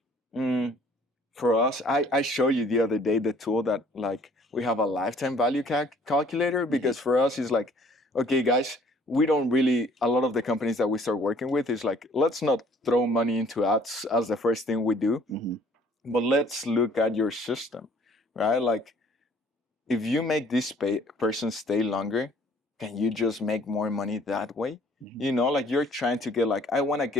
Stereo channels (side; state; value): both; normal; correlation 0.57